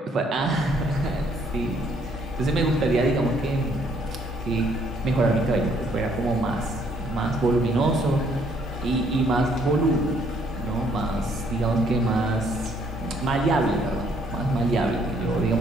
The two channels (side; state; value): both; normal; correlation 0.66